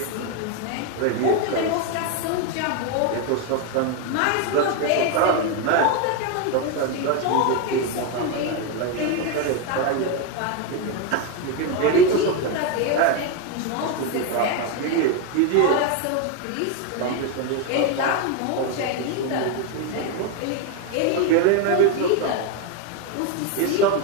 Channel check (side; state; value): both; different; correlation 0.02